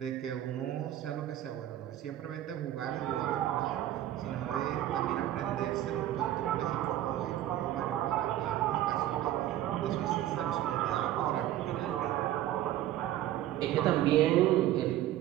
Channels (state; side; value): quieter; left; 13.1 dB